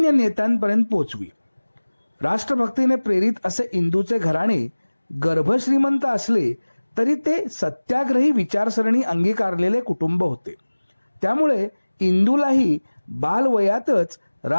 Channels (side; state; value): both; inverted; correlation -1.00